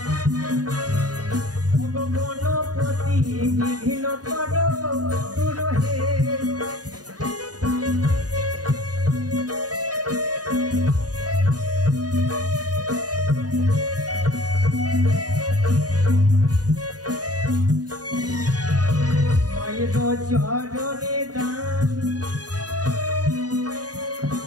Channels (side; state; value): left; late; 0.68 ms